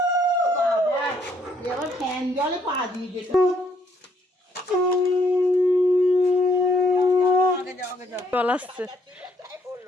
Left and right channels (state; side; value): normal; both; correlation 0.69